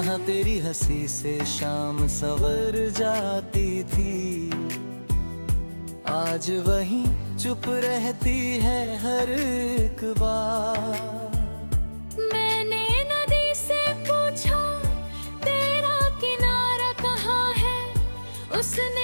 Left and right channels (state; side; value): inverted; both; correlation -1.00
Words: तेरी हंसी से शाम सवर जाती थी, आज वहीं चुप रहती है हर एक बार। मैंने नदी से पूछा तेरा किनारा कहाँ है,